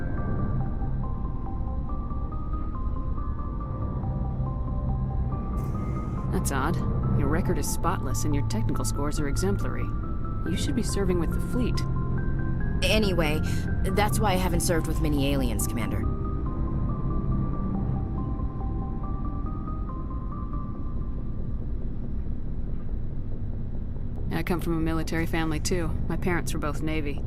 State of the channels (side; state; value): both; identical; correlation 1.00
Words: That's odd. Your record is spotless and your technical scores are exemplary. You should be serving with the fleet. Anyway, that's why I haven't served with many aliens, Commander. I come from a military family too. My parents were both Navy.